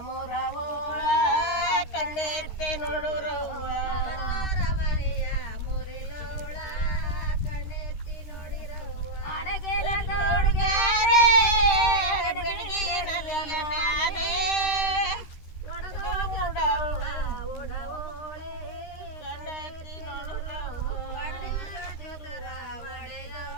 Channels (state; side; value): late; right; 13 ms